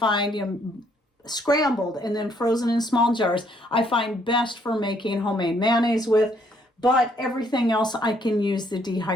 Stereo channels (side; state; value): both; normal; correlation 0.68